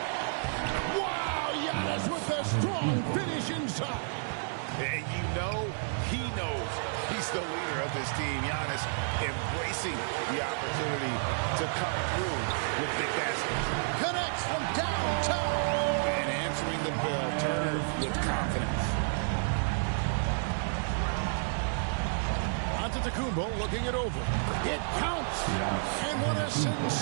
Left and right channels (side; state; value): left; silent; digital silence